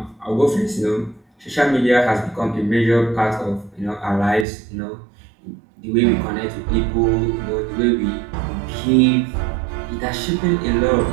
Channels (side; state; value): left; drops out; at 4.5 s